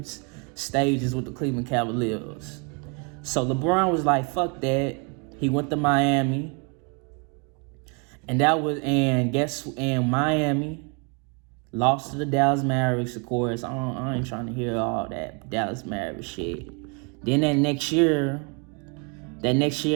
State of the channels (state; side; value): quieter; left; 34.8 dB